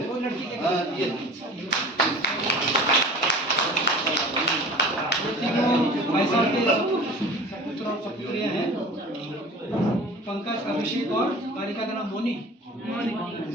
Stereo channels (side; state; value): both; normal; correlation 0.41